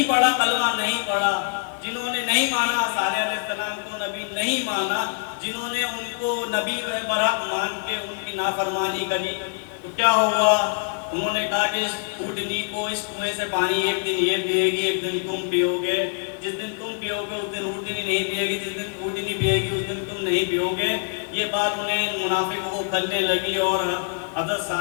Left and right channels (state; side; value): silent; right; 62 dB below the other